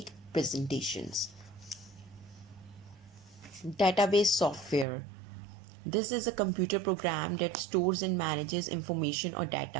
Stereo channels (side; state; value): left; drops out; at 4.9 s